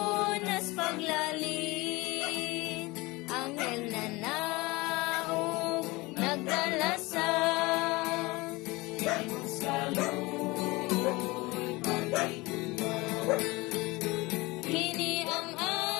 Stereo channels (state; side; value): quieter; right; 22.8 dB